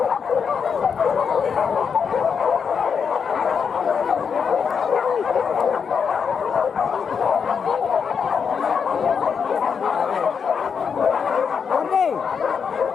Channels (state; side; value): quieter; right; 6.4 dB